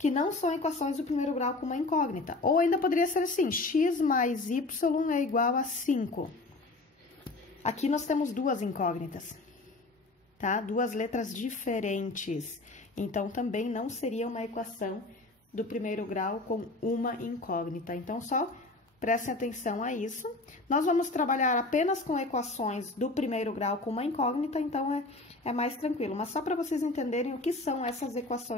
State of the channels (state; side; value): quieter; right; 3.1 dB